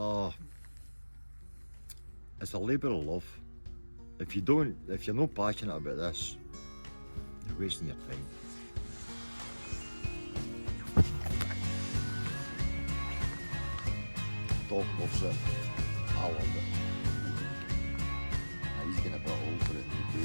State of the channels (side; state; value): both; inverted; correlation -1.00